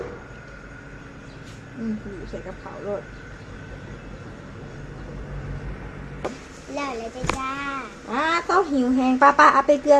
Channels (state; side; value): identical; both; correlation 1.00